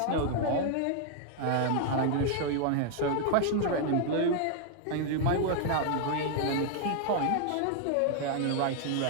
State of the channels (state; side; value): different; both; correlation 0.00